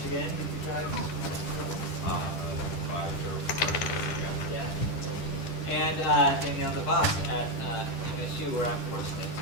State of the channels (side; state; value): right; late; 10 ms